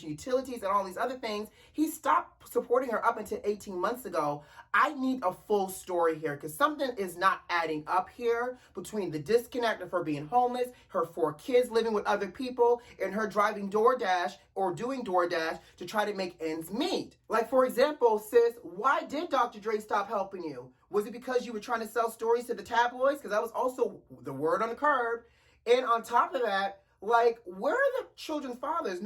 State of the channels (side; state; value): both; identical; correlation 1.00